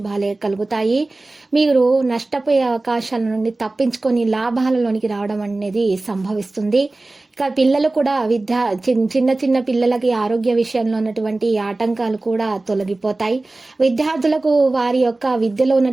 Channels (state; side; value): quieter; left; 3.0 dB